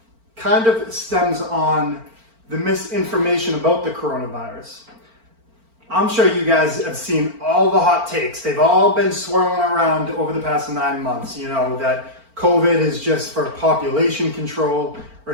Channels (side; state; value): left; late; 4.4 ms